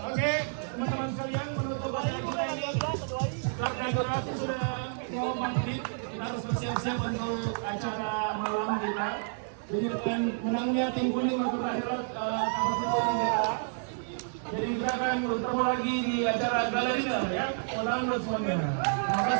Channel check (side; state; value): left; silent; digital silence